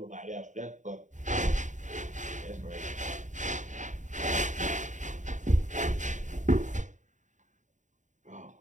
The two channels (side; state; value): left; late; 0.36 ms